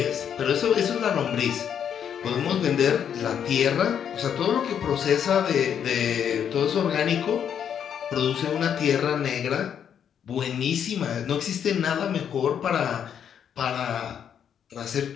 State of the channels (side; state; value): right; quieter; 8.5 dB